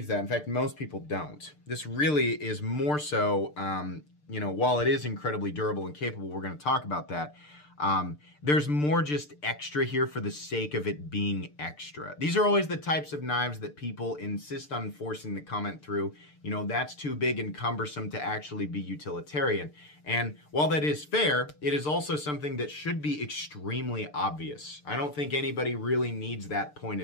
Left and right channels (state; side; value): late; right; 6.7 ms